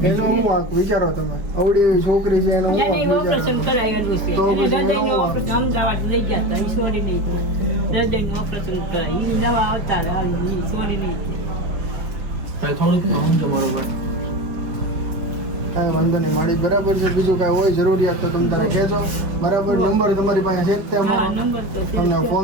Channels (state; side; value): late; left; 5.0 ms